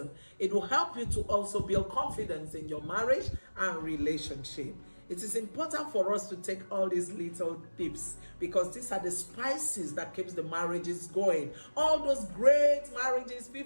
It will help you to also build confidence in your marriage and relationship. It is important for us to take all these little tips because these are the spices that keeps the marriages going. All those great marriages,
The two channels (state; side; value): inverted; both; correlation -1.00